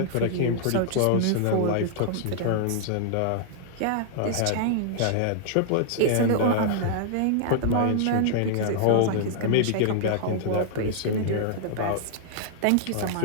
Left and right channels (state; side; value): different; both; correlation -0.01